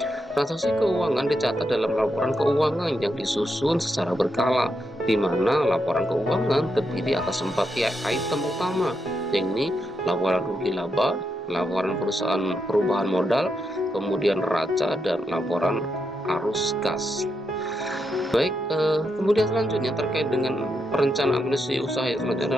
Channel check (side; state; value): both; normal; correlation 0.82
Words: Transaksi keuangan dicatat dalam laporan keuangan yang disusun secara berkala, di mana laporan keuangan terdiri atas 4 item utama, yakni laporan rugi laba, laporan perusahaan perubahan modal, kemudian neraca, dan laporan arus kas. Baik, kemudian selanjutnya terkait dengan perencanaan administrasi usaha yang selanjutnya